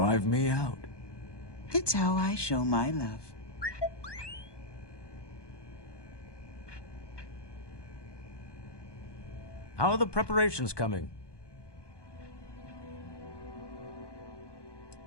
me out. It's how I show my love. How are the preparations coming?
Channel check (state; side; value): late; right; 1.2 ms